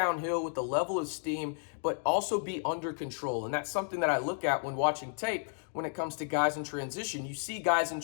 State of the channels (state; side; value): silent; right; 56 dB below the other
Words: with a level of steam, but also be under control. And that's something that I look at when watching tape when it comes to guys in transition. You see guys in